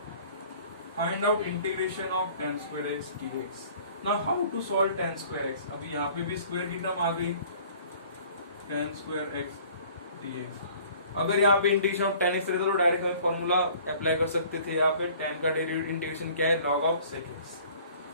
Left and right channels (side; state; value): both; inverted; correlation -0.52